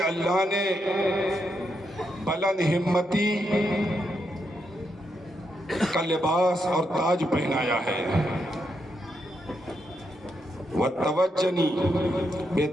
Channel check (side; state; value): both; normal; correlation 0.81